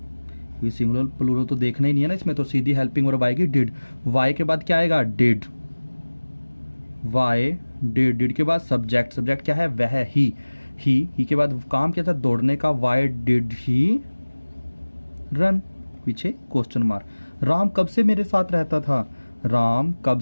ये सिंगुलर प्लूरल तो देखना ही नहीं है ना इसमें, तो सीधी हेल्पिंग वर्ब आएगी डिड। वाई के बाद क्या आएगा, डिड, वाई डिड। डिड के बाद सब्जेक्ट, सब्जेक्ट क्या है, वह, ही के बाद काम क्या था, दौड़ने का, वाई डिड ही रन, पीछे क्वेश्चन मार्क। राम कब से मेरे साथ रहता था, राम कब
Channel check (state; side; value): inverted; both; correlation -1.00